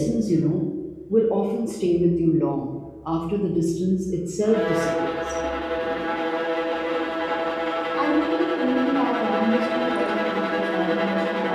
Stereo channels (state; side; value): identical; both; correlation 1.00